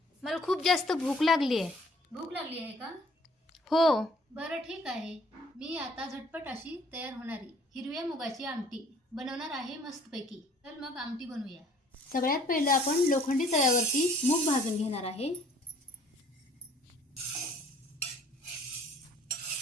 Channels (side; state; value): both; normal; correlation 0.57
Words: मला खूप जास्त भूक लागली आहे. भूक लागली आहे का? हो. बरं ठीक आहे. मी आता झटपट अशी तयार होणारी हिरव्या मुगाची आमटी बनवणार आहे मस्तपैकी. तर मग आमटी बनवूया. सगळ्यात पहिलं आपण लोखंडी तव्यावरती मूग भाजून घेणार आहे.